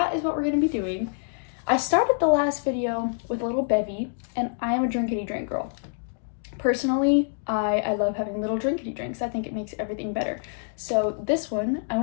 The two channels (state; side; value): silent; right; digital silence